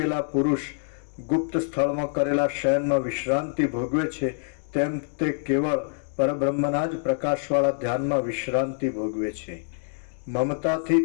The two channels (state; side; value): silent; right; 61 dB below the other